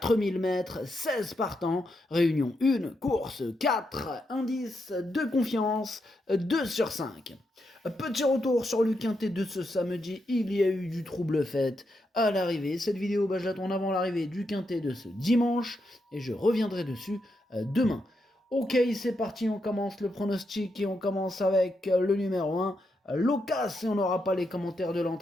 mètres, 16 partants, réunion 1, course 4, indice de confiance 2 sur 5. Petit retour sur le quintet de ce samedi, il y a eu du trouble fait à l'arrivée. Cette vidéo, je la tourne avant l'arrivée du quintet de ce dimanche et je reviendrai dessus demain. Ok, c'est parti, on commence le pronostic et on commence avec le numéro 1, Locas, et on n'aura pas les commentaires de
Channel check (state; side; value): normal; both; correlation 0.83